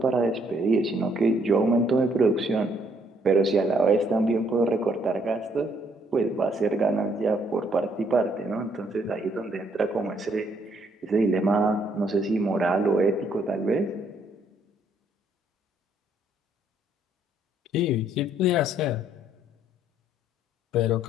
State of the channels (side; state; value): both; normal; correlation 0.68